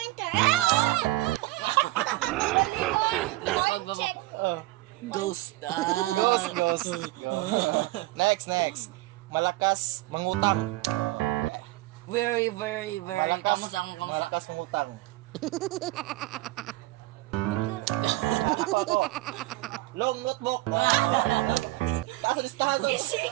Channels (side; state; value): left; quieter; 19.1 dB